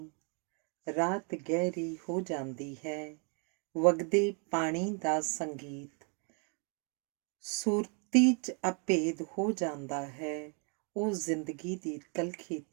ਰਾਤ ਗਹਿਰੀ ਹੋ ਜਾਂਦੀ ਹੈ, ਵਗਦੇ ਪਾਣੀ ਦਾ ਸੰਗੀਤ ਸੁਰਤੀ 'ਚ ਅਭੇਦ ਹੋ ਜਾਂਦਾ ਹੈ। ਉਹ ਜ਼ਿੰਦਗੀ ਦੀ ਤਲਖੀ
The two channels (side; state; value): left; quieter; 37.9 dB